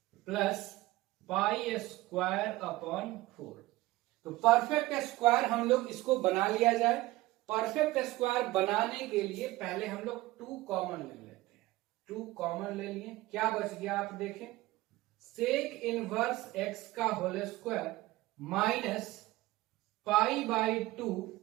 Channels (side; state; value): left; quieter; 18.5 dB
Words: plus pi square upon 4। तो perfect square हम लोग इसको बना लिया जाए। परफेक्ट स्क्वायर बनाने के लिए पहले हम लोग 2 कॉमन ले लेते हैं। 2 कॉमन ले लिए, क्या बच गया आप देखें, सेक इनवर्स x का whole square minus π/2